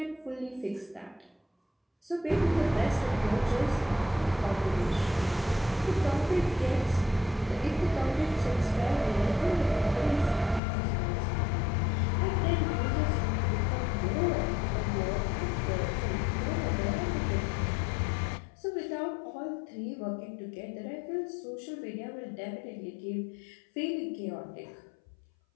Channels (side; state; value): right; drops out; at 10.6 s